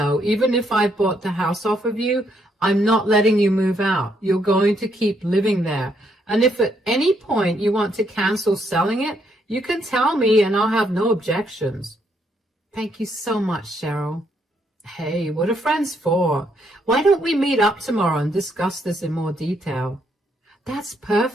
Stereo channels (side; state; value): both; normal; correlation 0.74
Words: even if I bought the house off of you, I'm not letting you move out. You're going to keep living there. And if at any point you want to cancel selling it, you can tell me and I'll have no objections. Thank you so much, Cheryl. Hey, what are friends for? Why don't we meet up tomorrow and discuss this in more detail? That's